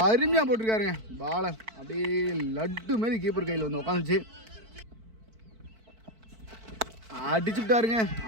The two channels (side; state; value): left; late; 4.5 ms